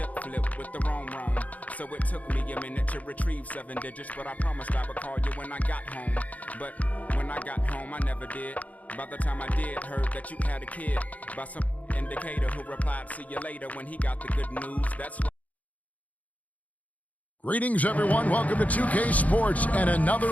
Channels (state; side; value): late; right; 0.072 ms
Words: flip with the roam. So it took me a minute to retrieve 7 digits, but I promised I would call you when I got home. But when I got home, I never did. By the time I did, heard that you had a kid. By some indicator who replied, see you later, when he got the good news. That's what. Greetings, everyone. Welcome to 2K Sports and